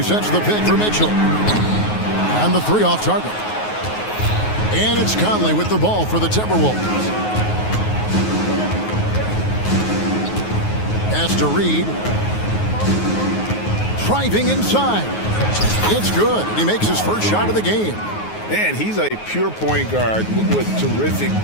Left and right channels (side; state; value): right; late; 9.4 ms